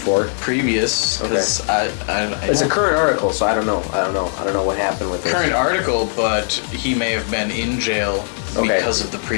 previous, because It's a current article, so I don't know. I don't know what happened with it. current article, but he may have been in jail Okay. because of the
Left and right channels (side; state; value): right; silent; digital silence